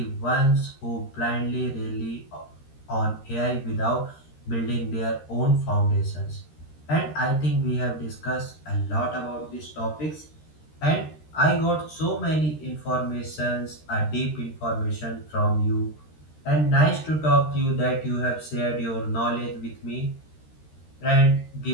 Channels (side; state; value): right; late; 13 ms